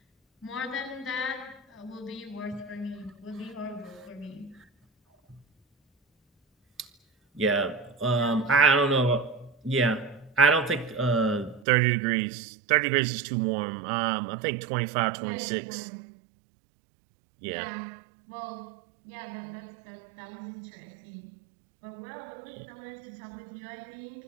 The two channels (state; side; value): drops out; left; at 11.7 s